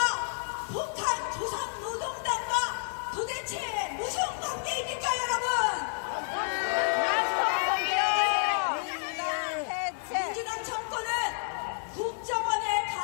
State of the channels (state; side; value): silent; right; digital silence